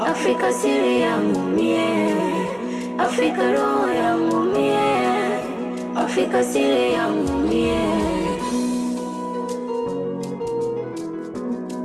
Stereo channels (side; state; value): both; identical; correlation 1.00